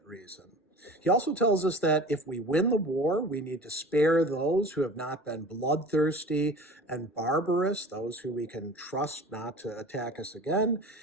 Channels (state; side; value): normal; both; correlation 0.40